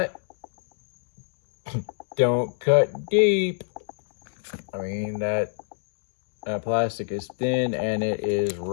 don't cut deep. I mean, that plastic is thin and it is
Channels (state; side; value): silent; right; digital silence